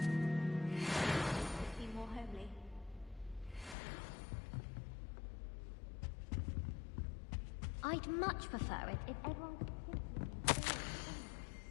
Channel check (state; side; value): drops out; right; at 3.8 s